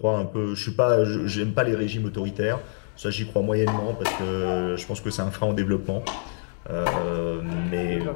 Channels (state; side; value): silent; right; digital silence